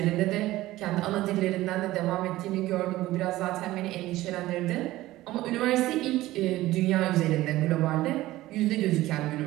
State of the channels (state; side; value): quieter; left; 16.7 dB